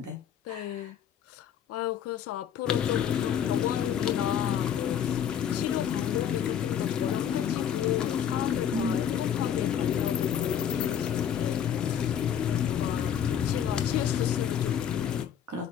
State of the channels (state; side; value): quieter; right; 9.0 dB